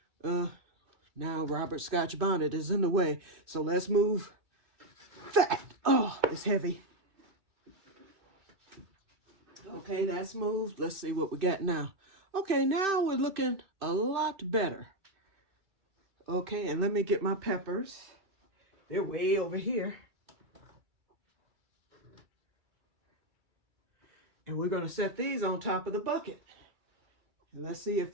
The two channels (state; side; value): late; left; 2.6 ms